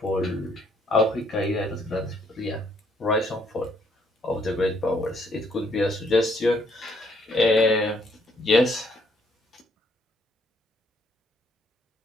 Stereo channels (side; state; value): both; normal; correlation 0.68